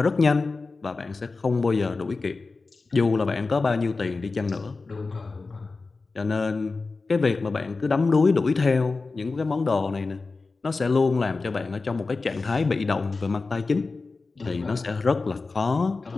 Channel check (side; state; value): right; quieter; 3.9 dB